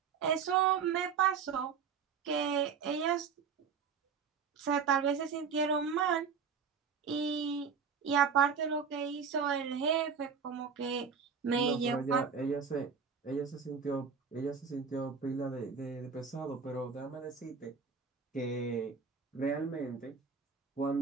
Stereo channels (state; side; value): quieter; left; 6.1 dB